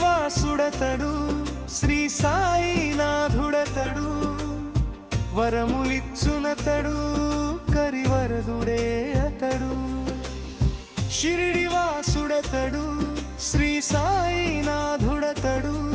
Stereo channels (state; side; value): identical; both; correlation 1.00